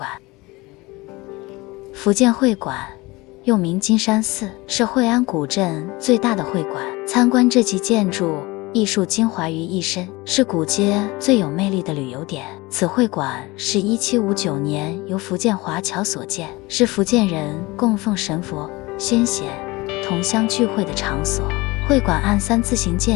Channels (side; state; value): right; quieter; 22.5 dB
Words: 福建会馆又名金山寺，是会安古镇最大的会馆。参观这集建筑，艺术精华于一身，是古街最有魅力的旅游点。此会馆是1759年由福建华侨所建，是福建人供奉神佛、先贤、同乡聚会的场所。会馆按3字形